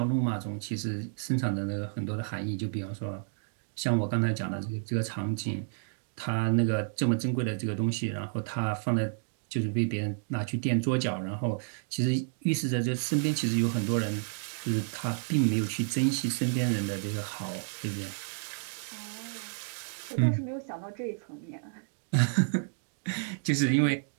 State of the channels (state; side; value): silent; left; digital silence